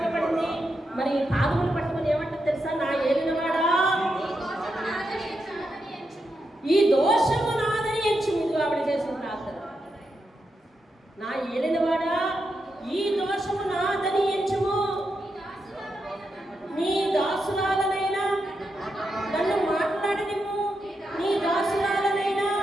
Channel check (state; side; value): normal; both; correlation 0.85